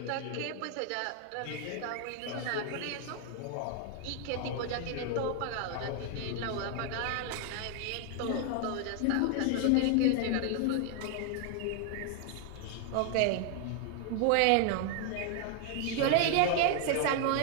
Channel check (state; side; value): different; both; correlation 0.00